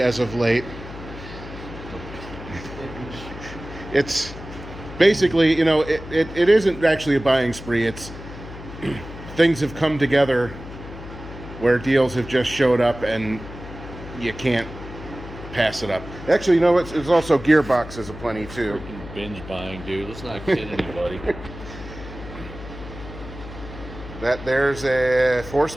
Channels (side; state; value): left; noise; hum, 13 dB below the sound